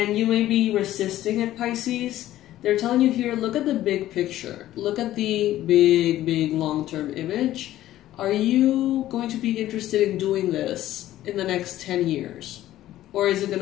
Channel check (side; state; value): right; quieter; 14.0 dB